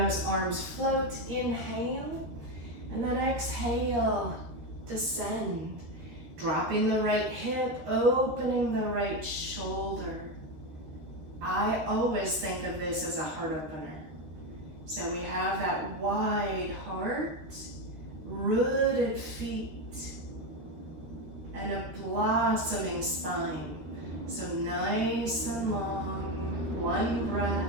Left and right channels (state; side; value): late; left; 13 ms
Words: arms float. Inhale, and then exhale, descend. Dropping the right hip, opening the right shoulder. I always think of this as a heart opener. So we have that wide heart, rooted feet, and a blossoming spine. So nice and long, one